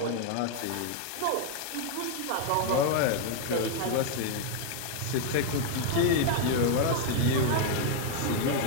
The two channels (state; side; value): different; both; correlation 0.00